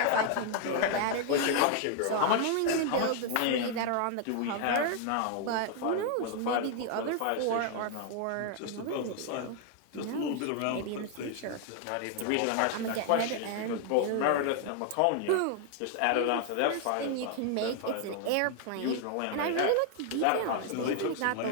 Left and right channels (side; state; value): both; different; correlation 0.00